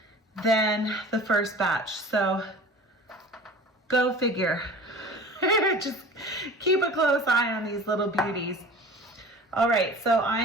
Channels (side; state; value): both; normal; correlation 0.40